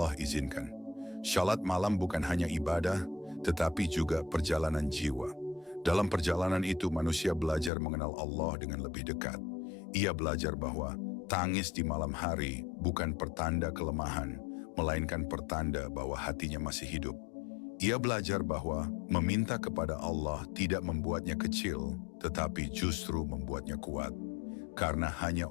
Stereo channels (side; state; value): right; drops out; at 7.7 s